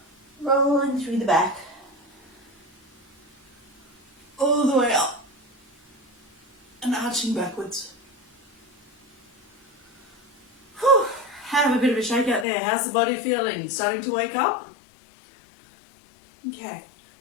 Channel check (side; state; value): right; drops out; at 12.5 s